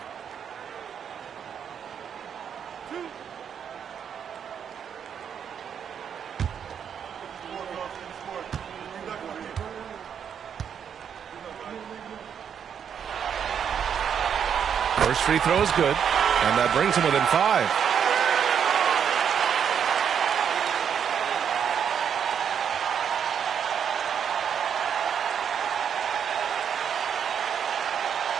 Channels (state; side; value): quieter; left; 8.0 dB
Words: First free throw is good, and that brings him within 5.